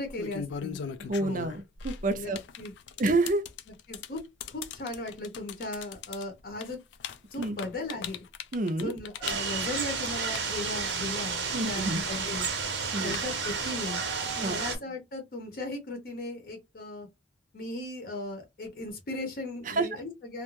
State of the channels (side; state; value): both; normal; correlation 0.29